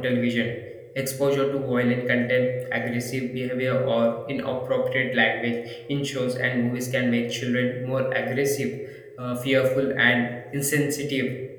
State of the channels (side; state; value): both; identical; correlation 1.00